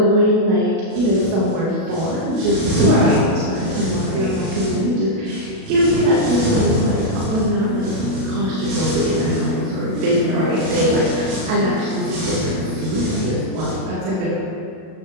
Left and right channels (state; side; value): late; left; 37 ms